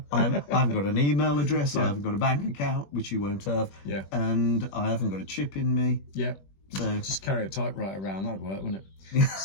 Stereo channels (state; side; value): late; right; 21 ms